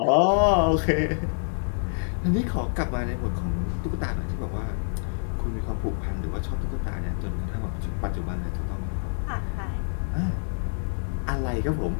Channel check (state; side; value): silent; right; 60 dB below the other